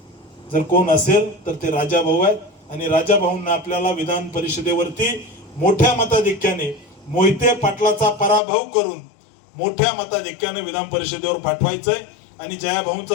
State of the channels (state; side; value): drops out; right; at 8.4 s